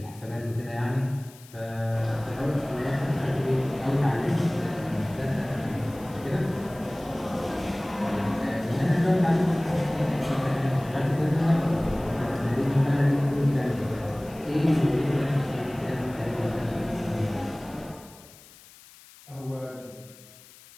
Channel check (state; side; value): noise; left; hiss, 22 dB below the sound